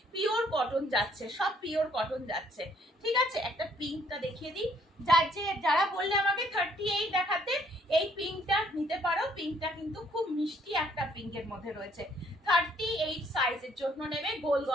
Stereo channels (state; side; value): normal; both; correlation 0.65